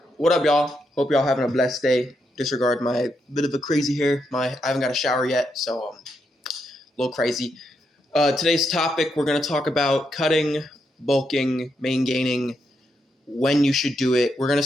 What up, y'all? Hope y'all having a blessed day. Disregard my bit of a crazy hair. I haven't got a shower yet, so a little crazy. Today's topic, we're gonna talk about cutting, bulking, main gaining, when you should do it. I'm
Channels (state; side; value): normal; both; correlation 0.81